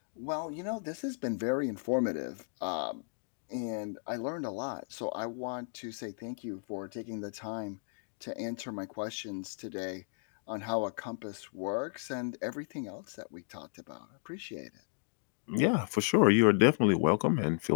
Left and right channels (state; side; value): silent; right; digital silence